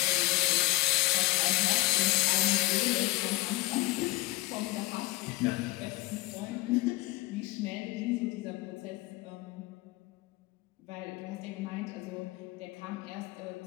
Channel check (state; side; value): quieter; right; 21.3 dB